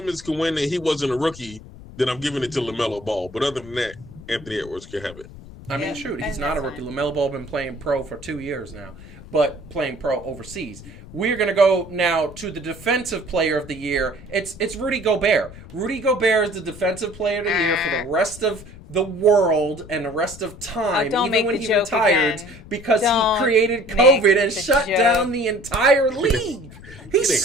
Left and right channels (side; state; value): left; noise; rumble, 17 dB below the sound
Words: can win and he wasn't a rookie, then I'm giving it to LaMelo Ball. But other than that, Anthony Edwards can have it. I mean, shoot, he's not a rookie. LaMelo Ball been playing pro for 2 years now, but playing pro overseas. We're going to go now to the defensive player of the year. It's Rudy Gobert. Rudy Gobert is the defensive player of the year for the rest of the world and the rest of time, even when he retired, because he created COVID and shut down the entire league. He